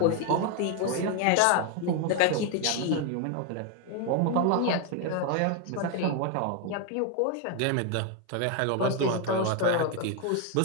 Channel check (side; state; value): both; different; correlation 0.01